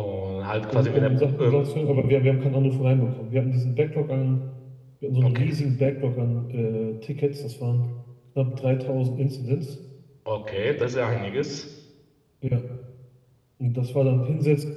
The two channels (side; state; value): both; identical; correlation 1.00